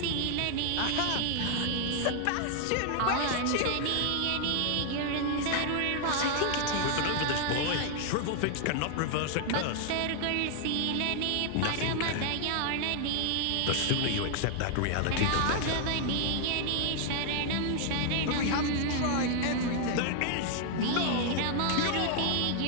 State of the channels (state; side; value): different; both; correlation 0.00